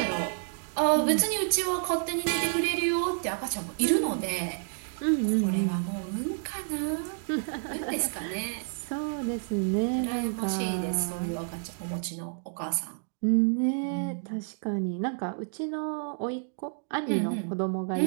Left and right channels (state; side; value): silent; left; digital silence